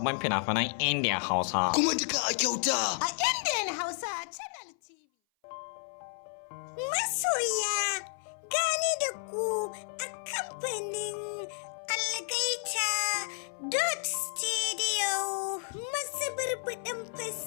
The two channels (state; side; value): silent; right; 57 dB below the other